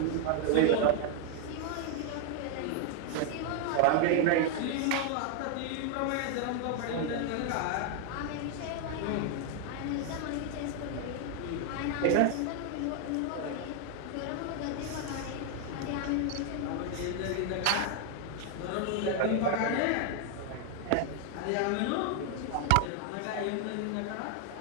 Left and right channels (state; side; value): different; both; correlation 0.01